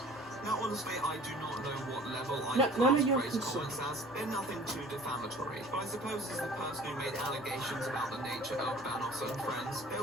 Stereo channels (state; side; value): normal; both; correlation 0.47